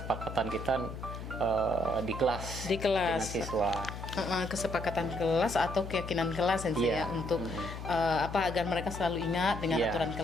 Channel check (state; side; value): noise; left; hum, 9 dB below the sound